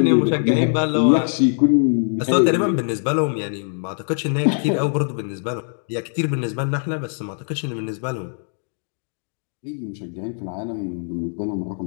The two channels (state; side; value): silent; right; 64 dB below the other